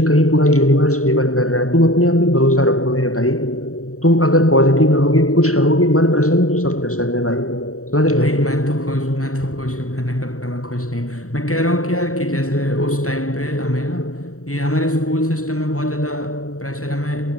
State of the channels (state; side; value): late; right; 0.64 ms